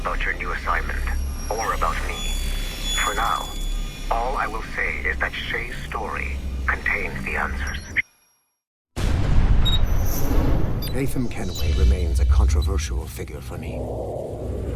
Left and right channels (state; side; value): identical; both; correlation 1.00